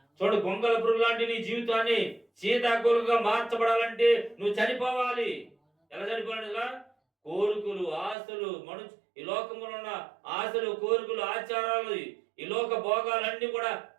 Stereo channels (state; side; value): drops out; left; at 8.2 s